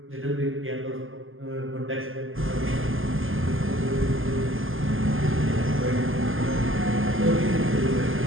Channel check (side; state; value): left; late; 0.59 ms